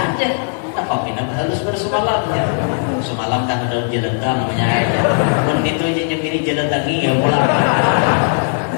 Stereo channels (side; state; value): right; silent; digital silence